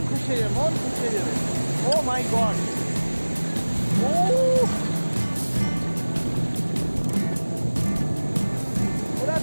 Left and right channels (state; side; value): inverted; both; correlation -1.00